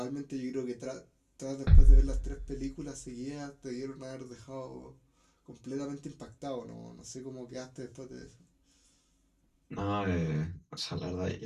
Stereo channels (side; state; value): both; identical; correlation 1.00